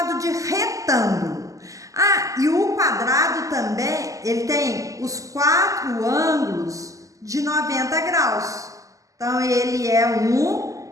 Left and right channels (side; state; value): left; late; 0.16 ms